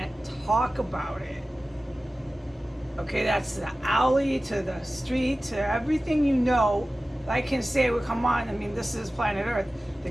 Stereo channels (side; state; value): both; normal; correlation 0.96